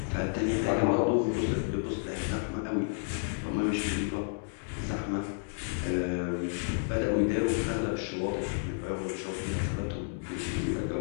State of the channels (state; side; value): silent; right; digital silence